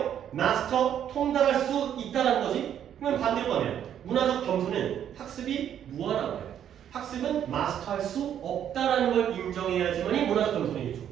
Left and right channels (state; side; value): quieter; left; 9.7 dB